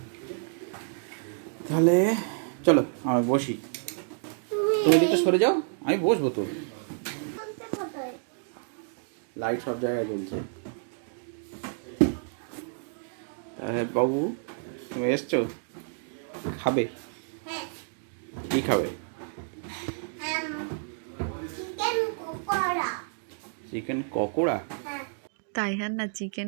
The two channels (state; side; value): silent; left; digital silence